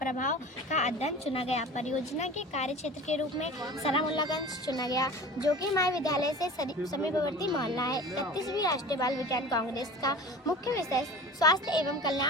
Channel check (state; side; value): normal; both; correlation 0.38